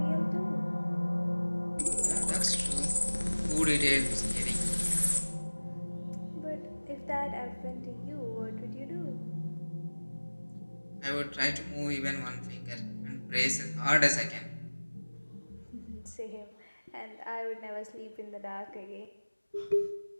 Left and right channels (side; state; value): both; inverted; correlation -1.00